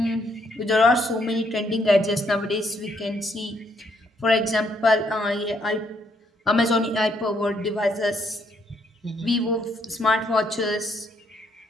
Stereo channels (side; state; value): both; normal; correlation 0.71